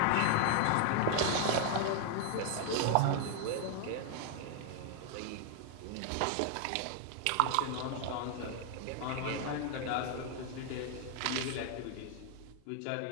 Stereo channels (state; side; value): different; both; correlation 0.00